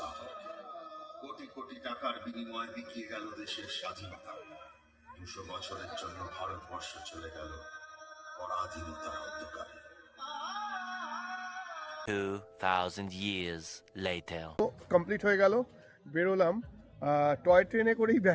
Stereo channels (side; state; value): both; identical; correlation 1.00